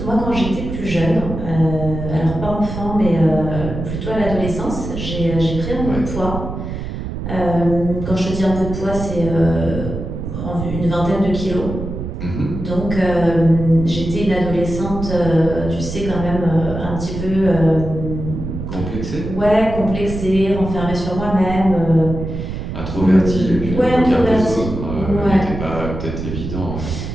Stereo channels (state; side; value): noise; right; rumble, 6 dB below the sound